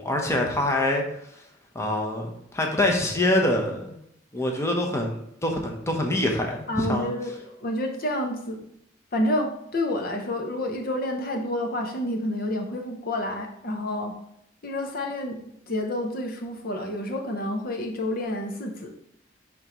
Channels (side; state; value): both; normal; correlation 0.37